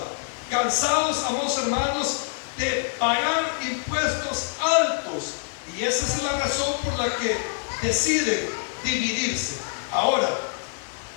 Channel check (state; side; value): silent; right; digital silence